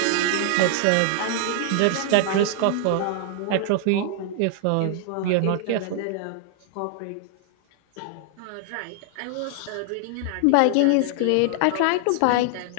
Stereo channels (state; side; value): different; both; correlation 0.00